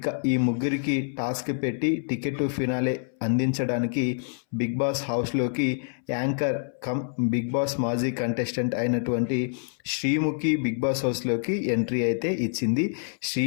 ఈ ముగ్గురికి టాస్క్ పెట్టి టికెట్ టు ఫినాలే అందించడానికి బిగ్ బాస్ హౌస్లోకి యాంకర్ కమ్ బిగ్ బాస్ మాజీ కంటెస్టెంట్ అయినటువంటి శ్రీముఖి బిగ్ బాస్ హౌస్లోకి ఎంట్రీ అయితే ఇచ్చింది.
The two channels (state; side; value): silent; right; 60 dB below the other